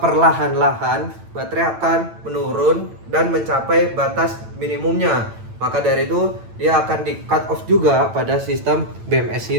baterai akan menurun dan mencapai batas minimumnya. Maka dari itu dia akan di cut off juga pada sistem BMS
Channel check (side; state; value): left; late; 9.0 ms